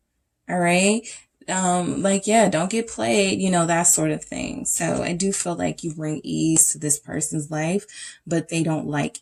All right. Like, yeah, don't get played, you know, that sort of thing. So I do feel like you bring ease to this person's life, but they don't like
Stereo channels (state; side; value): identical; both; correlation 1.00